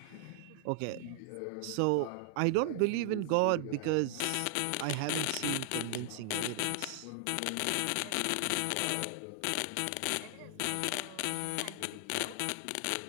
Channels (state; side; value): different; both; correlation 0.00